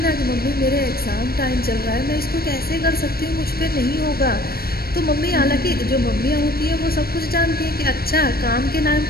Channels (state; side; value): late; right; 0.44 ms